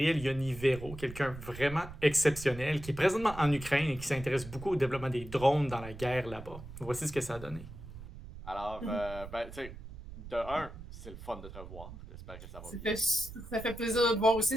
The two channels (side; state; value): right; noise; rumble, 13 dB below the sound